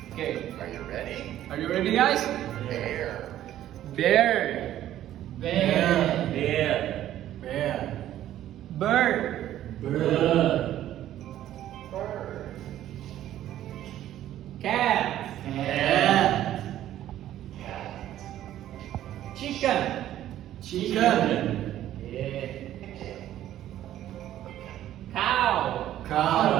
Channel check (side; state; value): left; quieter; 12.5 dB